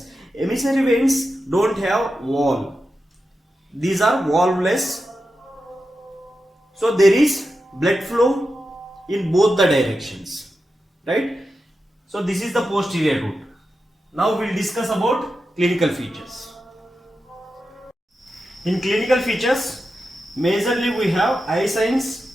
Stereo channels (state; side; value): normal; both; correlation 0.90